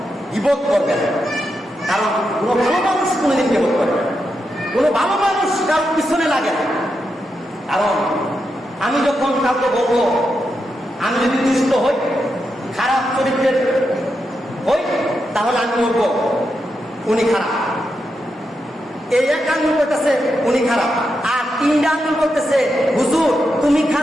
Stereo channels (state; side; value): normal; both; correlation 0.85